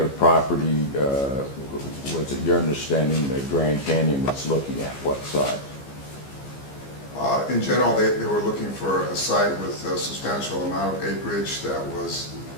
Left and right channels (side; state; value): right; late; 15 ms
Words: property was it your understanding that Grand Canyon was looking at? What size? In general, they were looking for a site with a substantial amount of acreage that was